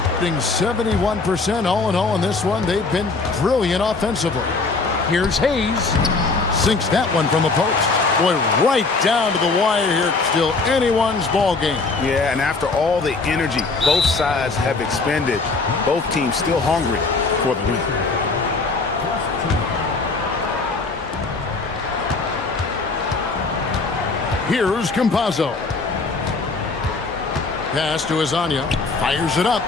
Shooting 71% all in all in this one. They've been brilliant offensively. Here's Hayes. Sinks that one from the post. Boy, right down to the wire here. Still anyone's ball game. Yeah, and after all the energy both sides have expended, both teams still hungry for the win. Here's Campazzo. Pass to Azania. Fires it up.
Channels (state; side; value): quieter; right; 3.9 dB